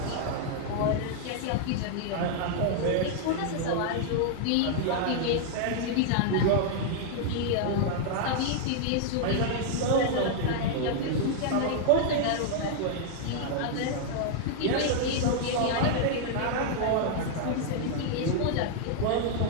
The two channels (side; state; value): both; different; correlation -0.01